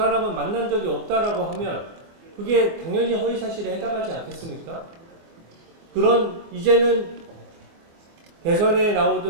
만난 적이 없다라고 하면 그게 당연히 허위사실에 해당하지 않겠습니까? 그런 이제는 대선에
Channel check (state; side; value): late; left; 24 ms